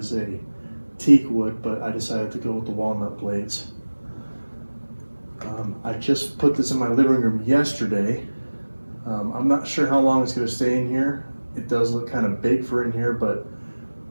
a teak wood, but I decided to go with the walnut blades. I just put this in my living room yesterday. I'm not sure how long it's going to stay in here. It does look kind of big for in here, but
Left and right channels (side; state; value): both; inverted; correlation -1.00